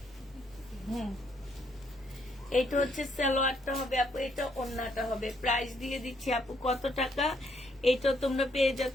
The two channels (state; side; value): normal; both; correlation 0.71